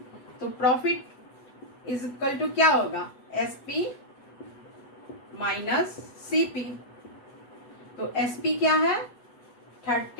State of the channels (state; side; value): late; right; 8.1 ms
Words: तो प्रॉफिट इज इक्वल टू क्या होगा? SP minus CP। तो SP क्या है?